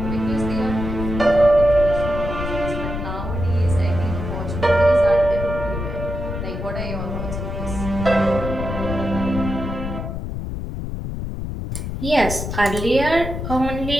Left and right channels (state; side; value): noise; left; rumble, 5 dB below the sound